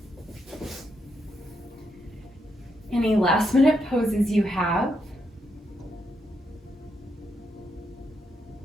Any last minute poses you have.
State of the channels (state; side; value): normal; both; correlation 0.80